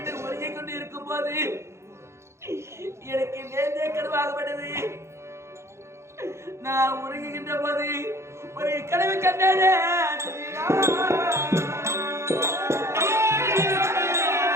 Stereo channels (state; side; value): late; left; 0.13 ms